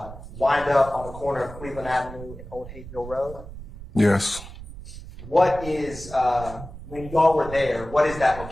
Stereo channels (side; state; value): right; noise; rumble, 13 dB below the sound